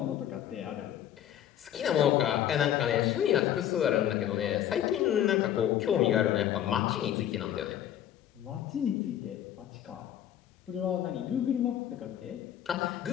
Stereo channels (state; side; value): quieter; right; 11.1 dB